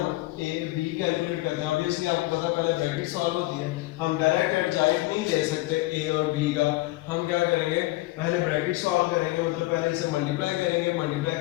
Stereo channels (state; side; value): quieter; right; 19.8 dB